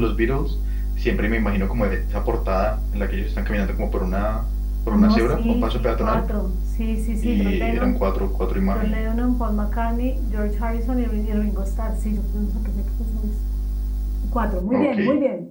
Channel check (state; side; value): identical; both; correlation 1.00